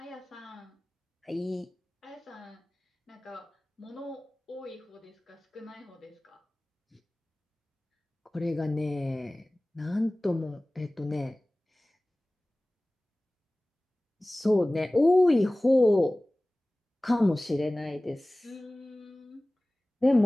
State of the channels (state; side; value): normal; both; correlation 0.98